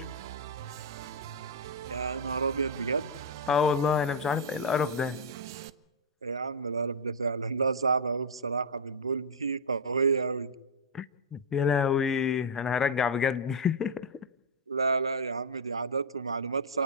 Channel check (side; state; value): both; normal; correlation -0.06